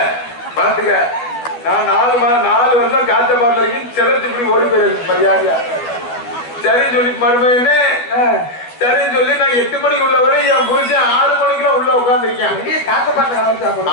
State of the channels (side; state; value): right; late; 12 ms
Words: பாத்துக்க. நான் 4 வருஷம் காத்த பாட்டு இருக்கேன். செலத்து இப்படி ஓடி போயிருக்கு மரியாதையா சரின்னு சொல்லி மறுபடியுமே சரின்னு சொல்லி நான் 8 மணிக்கு உள்ள வரை என் புரிச்சேன் 6 மணிக்கெல்லாம் உள்ள உட்காந்துருக்கேன்.